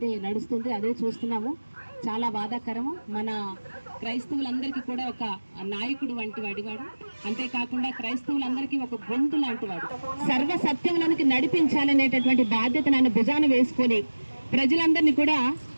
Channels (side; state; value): both; inverted; correlation -1.00